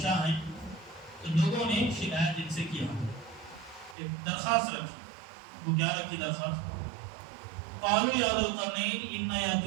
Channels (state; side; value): drops out; left; at 4.0 s